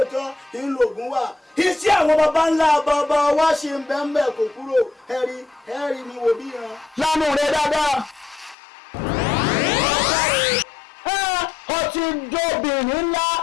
ńlọgùn wà iṣẹ́ àwọn baba ńlá bàbá wa ṣe ń bẹ́ẹ̀ kò kúrò ẹ̀rí mi wò bí yan. lánàá rẹ dáadáa ọtí jóbìnrin ńlá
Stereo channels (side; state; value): right; drops out; at 8.6 s